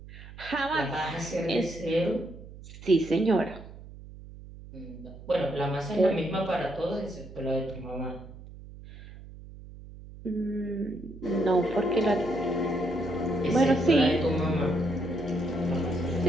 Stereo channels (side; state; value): right; noise; hum, 16 dB below the sound